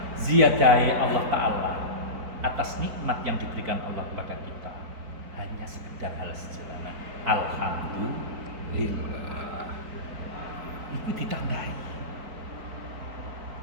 Ziyadahe Allah Taala atas nikmat yang diberikan Allah kepada kita hanya sekedar hal sederhana. Alhamdulillah. Itu ditambahi.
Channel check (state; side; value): late; left; 4.3 ms